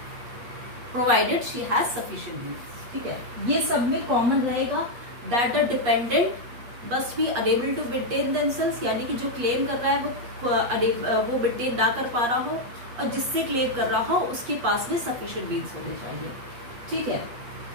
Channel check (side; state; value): left; late; 8.4 ms